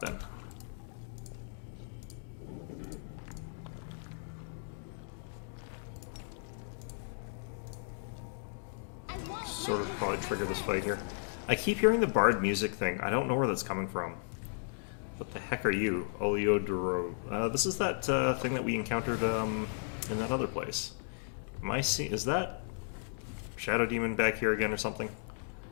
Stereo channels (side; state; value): right; silent; digital silence